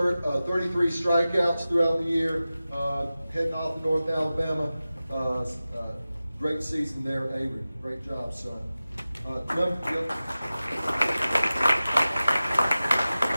strikeouts throughout the year, heading off to North Alabama. Great season there, Avery. Great job, son.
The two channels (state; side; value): inverted; both; correlation -0.95